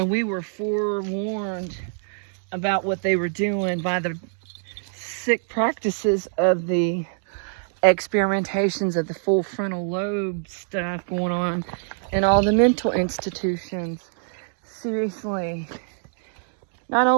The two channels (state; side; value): silent; left; digital silence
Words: we were forewarned about what they were doing by the sick practices of the experimentations of the full frontal lobe stuff going on in all the mental institutions. Seriously. Not